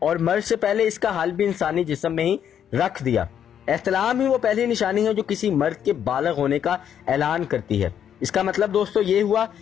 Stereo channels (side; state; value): right; quieter; 9.2 dB